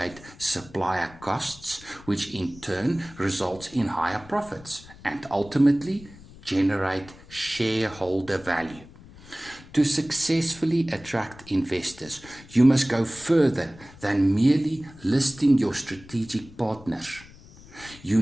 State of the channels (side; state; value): left; noise; rumble, 20 dB below the sound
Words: supplier costs, which in turn results in higher profits and ultimately generate shareholder value. To successfully attract investors, you must go further than merely listing your strategic partners. You